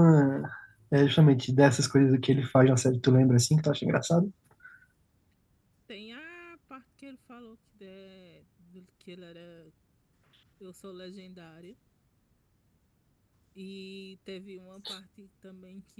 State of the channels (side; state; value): both; identical; correlation 1.00